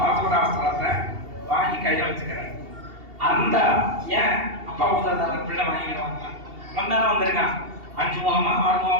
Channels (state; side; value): late; left; 2.7 ms